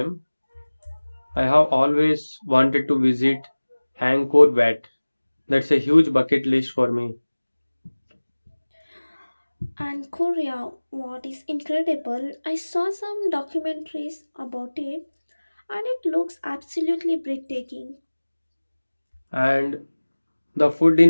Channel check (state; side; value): inverted; both; correlation -1.00